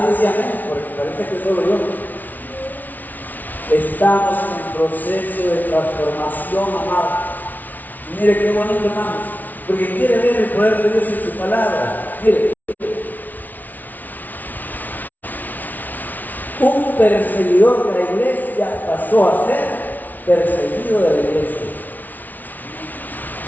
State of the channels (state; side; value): late; right; 0.080 ms